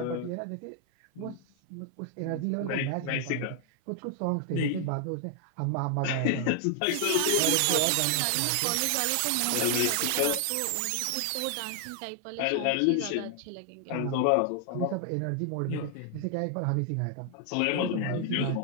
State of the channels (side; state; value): both; different; correlation 0.00